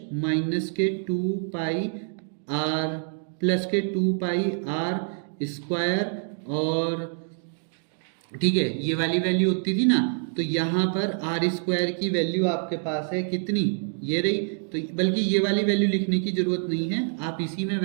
माइनस के 2 पाई आर प्लस के 2 पाई आर स्क्वायर, और ठीक है ये वाली वैल्यू होती थी ना। तो यहाँ पर आर स्क्वायर की वैल्यू आपके पास है कितनी, ये रही। तो बल्कि ये वाली वैल्यू लिखने की जरूरत नहीं है, आप इसी में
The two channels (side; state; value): left; silent; 61 dB below the other